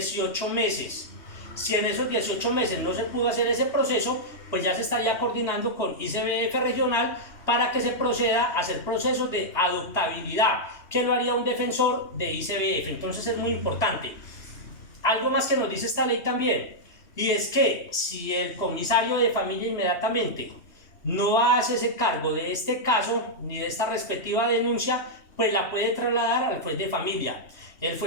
meses. Si en esos 18 meses no se pudo hacer ese proceso, pues ya se estaría coordinando con ICBF regional para que se proceda a hacer procesos de adoptabilidad, que lo haría un defensor de ICBF. Entonces es muy importante. Algo más que nos dice esta ley también, y es que si el comisario de familia inmediatamente no hace ese cargo de este caso ni de esta respectiva denuncia, pues la puede trasladar al juez de familia. El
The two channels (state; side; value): late; right; 3.2 ms